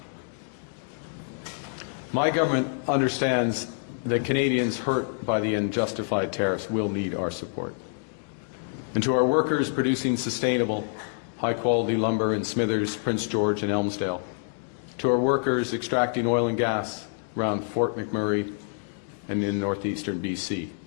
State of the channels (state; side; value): silent; right; digital silence